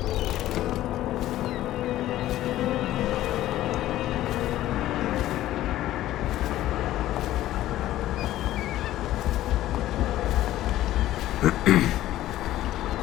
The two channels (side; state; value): right; quieter; 14.3 dB